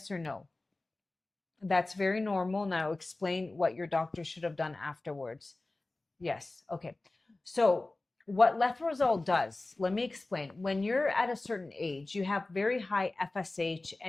or no? That's very normal. Now explain what your doctor should have done afterwards. Yes. Okay. So what letrozole does, let me explain. When you're at a certain age, you have very high FSH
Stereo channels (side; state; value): right; quieter; 3.0 dB